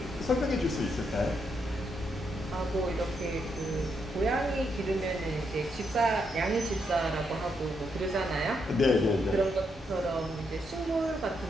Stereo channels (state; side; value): normal; both; correlation 0.79